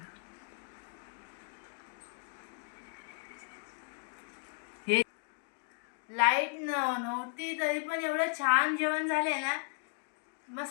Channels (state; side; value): silent; right; 54 dB below the other